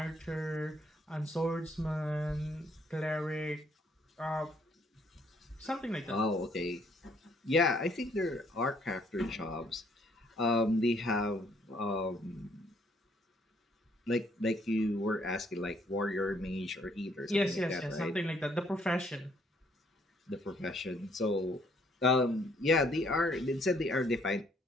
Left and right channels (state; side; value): normal; both; correlation 0.66